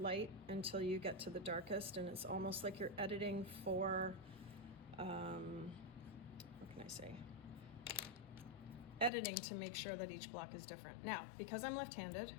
until you get to the darkest, and it's almost like you're editing for, what can I say? Editing to make sure that each block is different. Now, because I'm left-handed,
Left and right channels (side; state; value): right; drops out; at 9.1 s